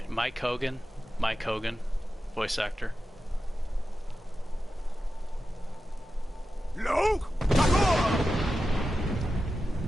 Hogan. Mike Hogan, voice actor.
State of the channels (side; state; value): both; normal; correlation 0.92